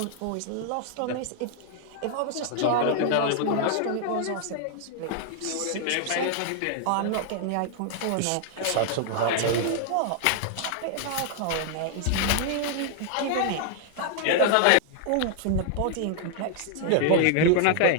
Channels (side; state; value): both; different; correlation 0.00